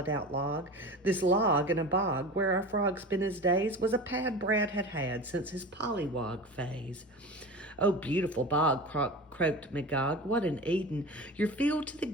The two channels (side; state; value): both; normal; correlation 0.32